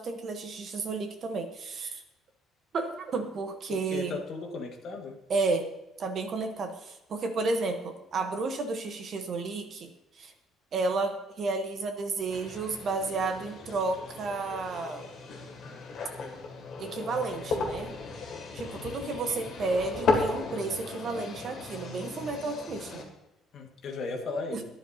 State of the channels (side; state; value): both; normal; correlation 0.64